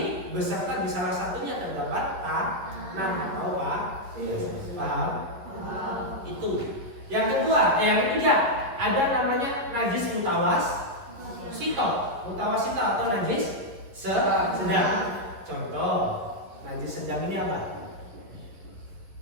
beserta di salah satunya terdapat tanah atau paham? Itu. Yang ketiga ada namanya najis mutawasito atau najis sedang. Contoh najis sedang ini apa?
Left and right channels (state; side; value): late; left; 11 ms